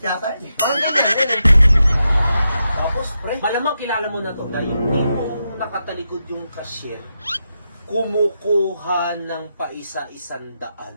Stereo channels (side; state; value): both; inverted; correlation -0.86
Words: yata eh. Parang ganyan eh. Tapos, pre, malamang kilala mo na to dahil yung tipong nakatalikod yung cashier, kumukuha ng